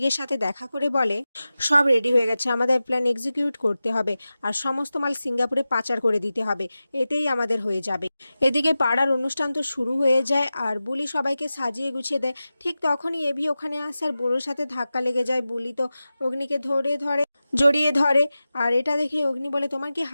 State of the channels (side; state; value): both; inverted; correlation -0.94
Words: সাথে দেখা করে বলে সব রেডি হয়ে গেছে, আমাদের প্ল্যান এক্সিকিউট করতে হবে আর সমস্ত মাল সিঙ্গাপুরে পাচার করে দিতে হবে, এতেই আমাদের হয়ে যাবে। এদিকে পাড়ার অনুষ্ঠান তো শুরু হয়ে যায় আর বুলি সবাইকে সাজিয়ে গুছিয়ে দেয়। ঠিক তখনই এভি ওখানে আসে আর বুড়োর সাথে ধাক্কা লেগে যায়। বুলি তো অগ্নিকে জড়িয়ে ধরে আর এটা দেখে অগ্নি বলে তোমার কি